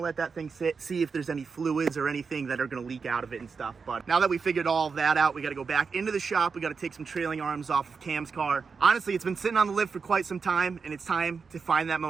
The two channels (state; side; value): quieter; left; 5.3 dB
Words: to let that thing sit, see if there's any fluids or anything that are going to leak out of it and stuff. But now that we figured all of that out, we got to go back into the shop. We got to take some trailing arms off of Cam's car. Honestly, it's been sitting on the lift for quite some time, and it's time to find that